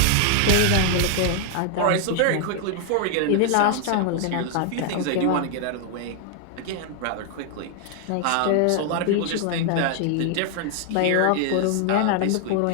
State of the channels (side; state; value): both; different; correlation 0.00